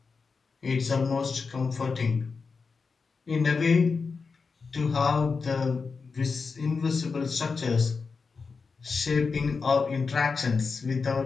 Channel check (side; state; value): right; quieter; 4.8 dB